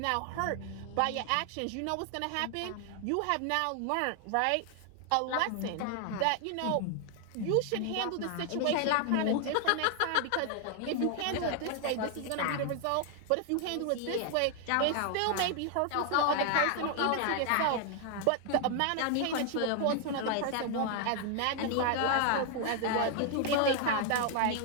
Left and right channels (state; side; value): different; both; correlation 0.00